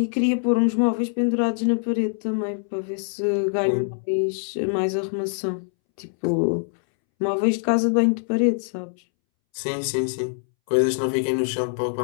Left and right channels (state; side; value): silent; right; 63 dB below the other